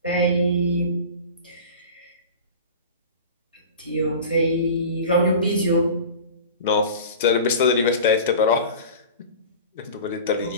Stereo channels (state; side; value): inverted; both; correlation -0.36